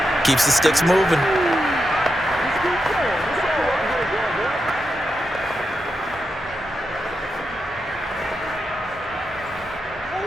Keeps the sticks moving.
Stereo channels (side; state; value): both; normal; correlation 0.87